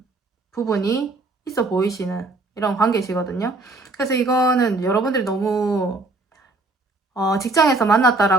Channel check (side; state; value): left; quieter; 3.2 dB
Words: 부분이 있어 보이시는 이런 관계시거든요. 그래서 이거는 여러분들이 너무 직장에서